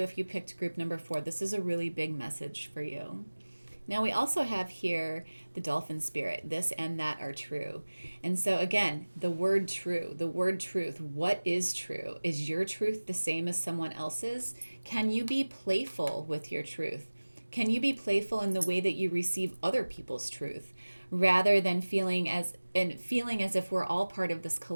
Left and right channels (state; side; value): inverted; both; correlation -1.00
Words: if you picked group number 4, this is a really big message for you. Now, we also have here the dolphin spirit. This and that are true. And so, again, the word true, the word truth. What is true? Is your truth the same as someone else's? Can you be playful with your truth? Can you be playful in the way that you receive other people's truth, rather than feeling as if we're all part of this